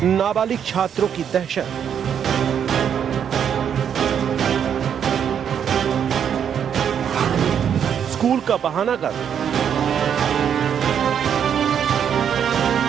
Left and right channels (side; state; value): left; quieter; 8.3 dB